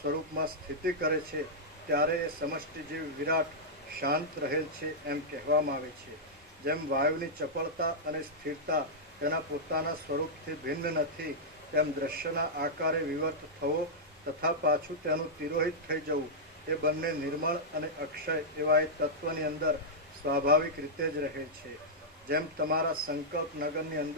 સ્થિતિ કરે છે ત્યારે એ સમષ્ટિ જેવી વિરાટ શાંત રહેલ છે એમ કહેવામાં આવે છે. જેમ વાયુની ચપળતા અને સ્થિરતા તેના પોતાના સ્વરૂપથી ભિન્ન નથી તેમ દ્રશ્યના આકારે વિવર્ત થવો તથા પાછું તેનું તિરોહિત થઈ જવું એ બંને નિર્મળ અને અક્ષય એવા એ તત્વની અંદર સ્વાભાવિક રીતે જ રહે છે. જેમ તમારા સંકલ્પ નગરની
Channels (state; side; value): normal; both; correlation -0.09